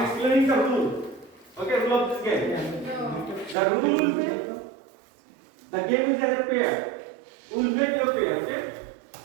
explaining the rule. Okay, rule of this game. The rule will be, the game is as a pair. We'll make your pair, okay?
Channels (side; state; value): left; drops out; at 3.6 s